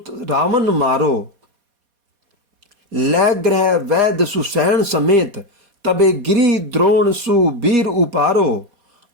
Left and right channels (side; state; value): left; late; 4.2 ms